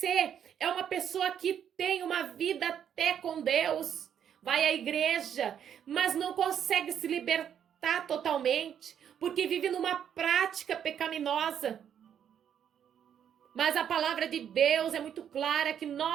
é uma pessoa que tem uma vida até com Deus. Vai à igreja, mas não consegue se libertar totalmente, porque vive numa prática pecaminosa. Mas a palavra de Deus é muito clara que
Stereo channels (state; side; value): quieter; left; 8.9 dB